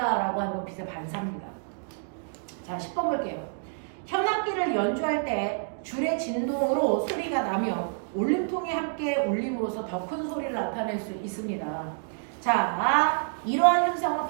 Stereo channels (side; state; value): left; silent; digital silence